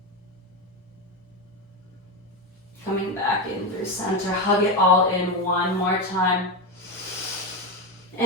Coming back in through center. Hug it all in one more time.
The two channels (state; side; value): normal; both; correlation 0.13